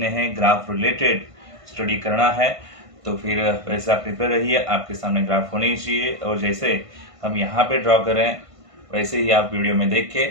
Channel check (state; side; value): late; left; 1.5 ms